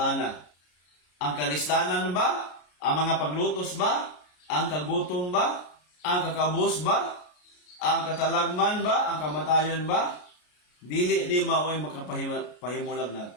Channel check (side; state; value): right; late; 33 ms